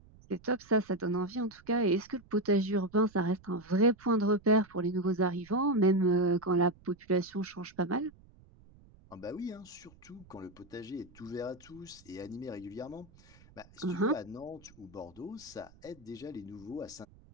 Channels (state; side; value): noise; right; rumble, 25 dB below the sound